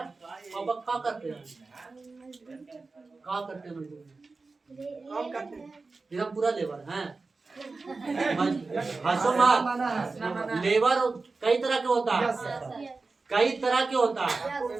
अब क्या करते हैं? क्या करते हैं? हम पूरा लेबर हैं। हंसो मत। लेबर कई तरह के होता है, कई तरह के होता है।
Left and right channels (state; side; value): quieter; left; 3.9 dB